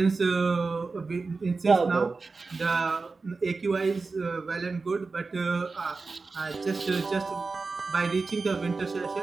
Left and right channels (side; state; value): left; quieter; 4.1 dB